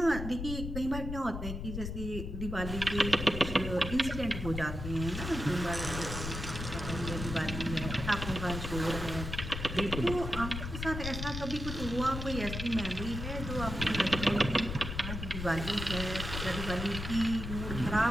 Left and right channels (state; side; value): noise; left; rumble, 6 dB below the sound